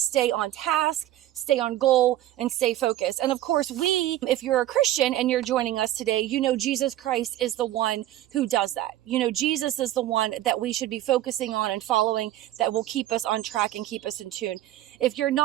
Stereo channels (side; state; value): left; quieter; 13.9 dB